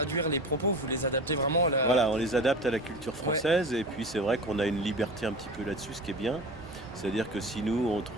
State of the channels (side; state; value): both; normal; correlation 0.33